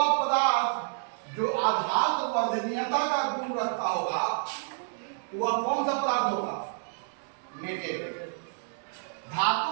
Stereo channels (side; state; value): left; silent; digital silence